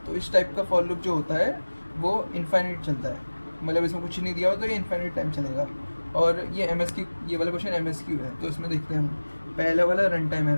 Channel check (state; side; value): inverted; both; correlation -1.00